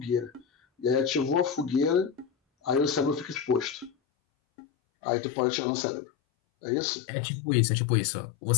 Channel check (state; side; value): drops out; right; at 3.9 s